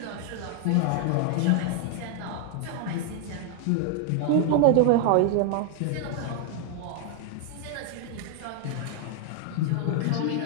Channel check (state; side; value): different; both; correlation 0.00